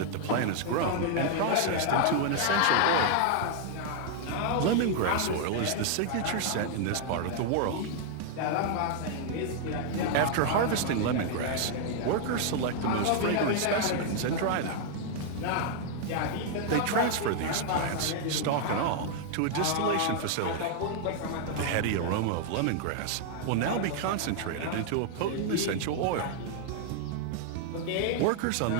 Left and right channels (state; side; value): different; both; correlation 0.00